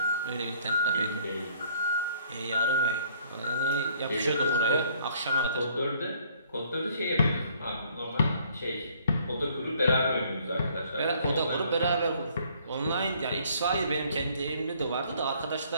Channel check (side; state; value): both; inverted; correlation -0.61